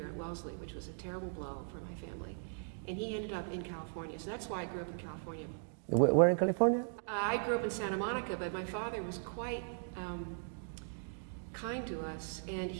at Wellesley, which was a terrible blow for my family. And he ended up in California, so that's why I grew up in California. Where in California? I grew up in Santa Monica, but my father was quite kind to us, and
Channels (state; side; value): silent; left; digital silence